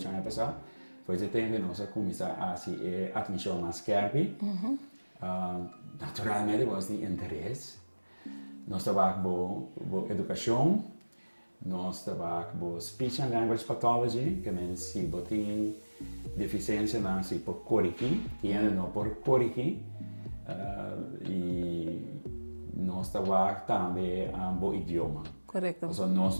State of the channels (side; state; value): both; inverted; correlation -1.00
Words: anos passado. Foi esse tempo que nós começamos a se atenção mais carpe. Naturalmente, nós temos interesse. Nós trabalhamos com educação, nós trabalhamos com speech and language pathology, que é se você tem deficiência não se por corrigir, tem não por corrigir. E nós trabalhamos também com idioma. Correto. Então, nós